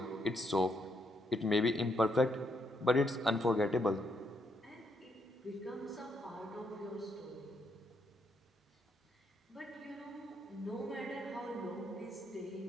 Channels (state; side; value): normal; both; correlation 0.76